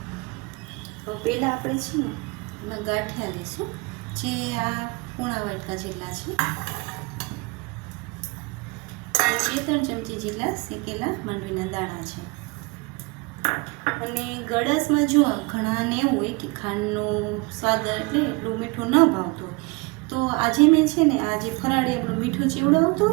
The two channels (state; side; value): quieter; left; 27.8 dB